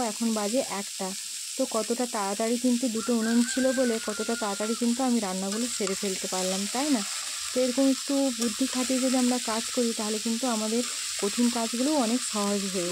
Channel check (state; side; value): identical; both; correlation 1.00